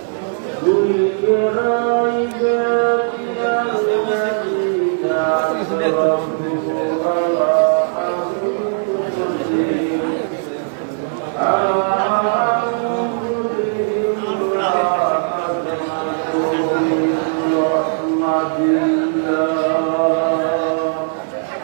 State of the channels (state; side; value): silent; left; digital silence